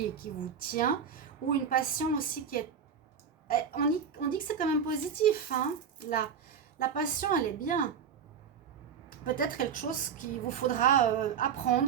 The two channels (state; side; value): quieter; left; 7.1 dB